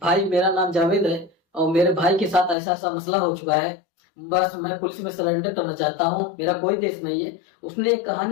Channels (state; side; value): drops out; right; at 2.6 s